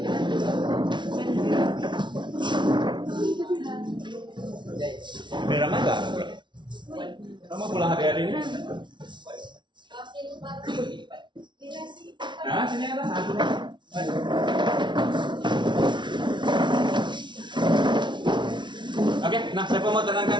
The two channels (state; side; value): late; left; 0.23 ms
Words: Udah ramai nggak? Kamu pulang hari-hari ini? Nah, sini ada satu. Oke, nah siapa mau terangkan